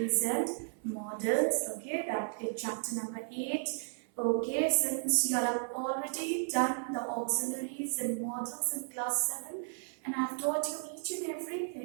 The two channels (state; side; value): silent; left; 55 dB below the other